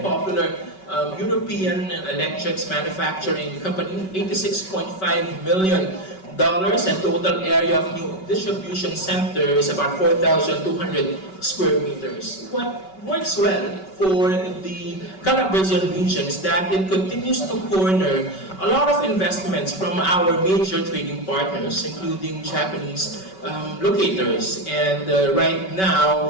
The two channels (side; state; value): right; late; 5.3 ms